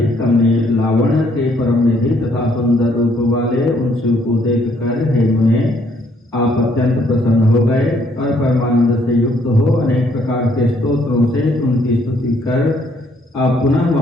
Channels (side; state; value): both; normal; correlation 0.67